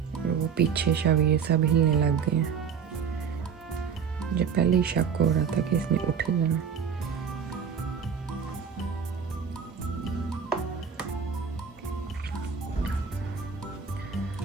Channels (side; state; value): left; quieter; 6.8 dB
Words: और वो पीछे शबीर सब हिलने लग गए हैं। मुझे पहले ही शक हो रहा था कि इसने उठ ही जाना।